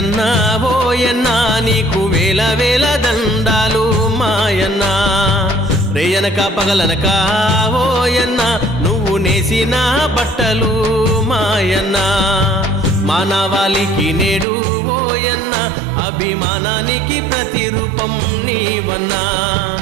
ఓయన్నా నీకు వేల వేల దండాలు మాయన్నా. రేయనక పగలనక ఓయన్నా నువ్వు నేసిన బట్టలు మాయన్నా. మానవాళికి నేడు ఓయన్నా అభిమానానికి ప్రతిరూపం నీవన్నా.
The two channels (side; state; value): left; drops out; at 14.5 s